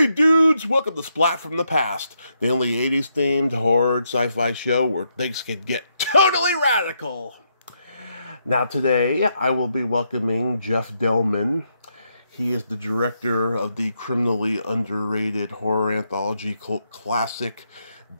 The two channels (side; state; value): both; inverted; correlation -0.79